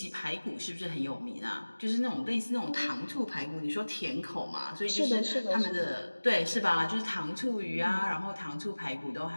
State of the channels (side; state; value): both; inverted; correlation -1.00